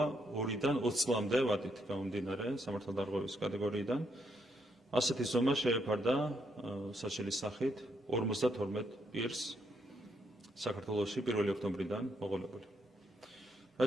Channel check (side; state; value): both; normal; correlation 0.76